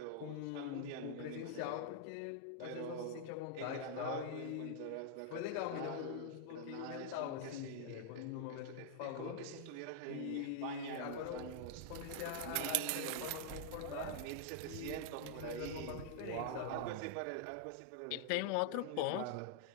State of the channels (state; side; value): different; both; correlation 0.00